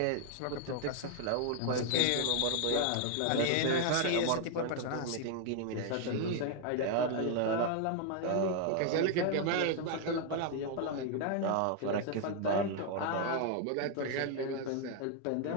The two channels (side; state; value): both; different; correlation 0.00